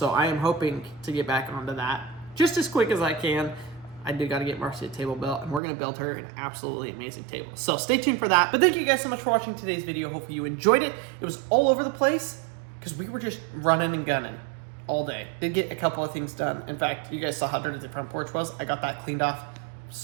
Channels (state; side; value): drops out; left; at 5.6 s